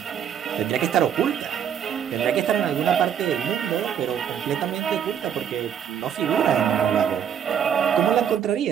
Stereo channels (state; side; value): quieter; left; 8.6 dB